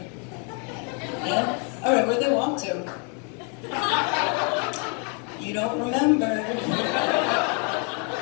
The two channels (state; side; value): quieter; right; 37.9 dB